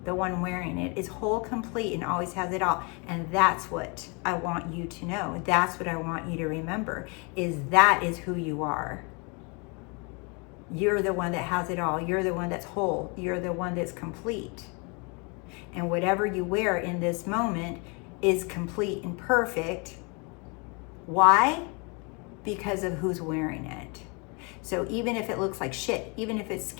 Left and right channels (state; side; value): quieter; right; 32.3 dB